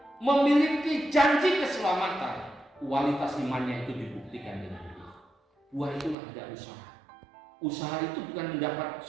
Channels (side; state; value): left; drops out; at 6.2 s